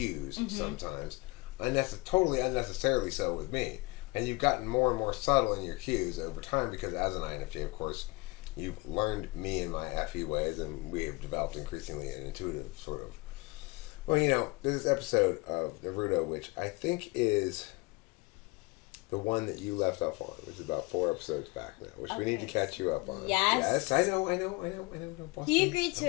sometimes, totally unnecessarily so with me. And you've gotten more and more subtle in your cues over time because as an INFJ, of course, you've learned me and my FE ways, and we have developed increasingly an intuitive sort of. Well, there's this episode of Naruto, which I think is the one that you left off on. It was about 4 episodes back now, which we need to catch you up on. Yes. I know. Boston, He agreed to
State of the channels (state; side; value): quieter; right; 25.0 dB